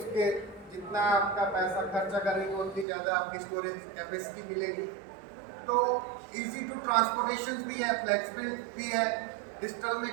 जितना आपका पैसा खर्चा करेंगे उतनी ज़्यादा आपकी स्टोरेज कैपेसिटी मिलेगी। तो इजी टू ट्रांसपोर्टेशन भी है, फ्लेक्सिबल भी है। डिजिटल में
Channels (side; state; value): left; drops out; at 2.9 s